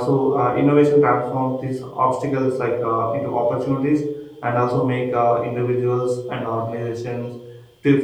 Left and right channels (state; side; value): identical; both; correlation 1.00